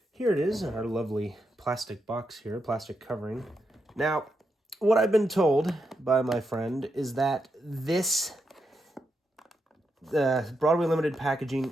Here it is, in our lovely plastic box here, plastic covering. Now, what I've been told by my friend is that this Broadway Limited packaging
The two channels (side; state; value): both; normal; correlation 0.83